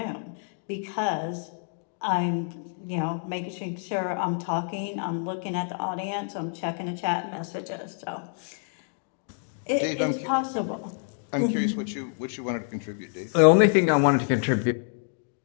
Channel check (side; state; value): right; silent; 60 dB below the other